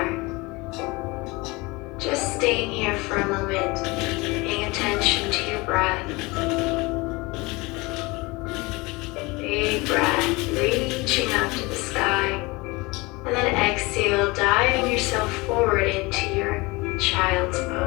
Just staying here for a moment, paying attention to your breath. Big breath, reaching up to the sky. And then exhale, diving yourself forward into your child's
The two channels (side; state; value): right; quieter; 24.1 dB